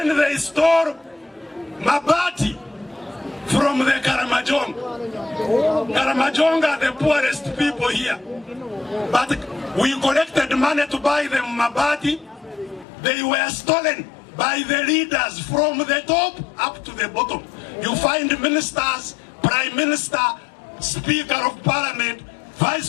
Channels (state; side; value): drops out; right; at 12.9 s